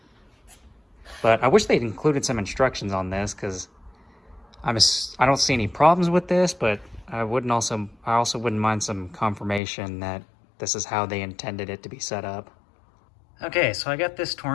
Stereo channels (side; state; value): right; drops out; at 9.6 s